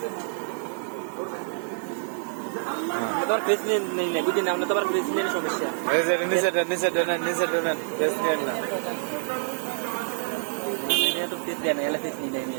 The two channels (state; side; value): silent; left; digital silence